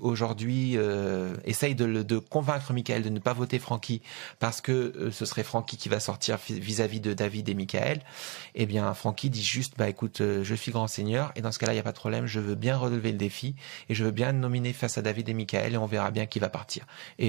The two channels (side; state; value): left; quieter; 29.9 dB